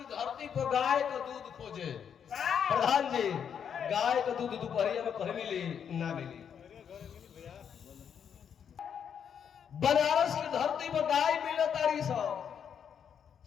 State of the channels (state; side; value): quieter; right; 7.9 dB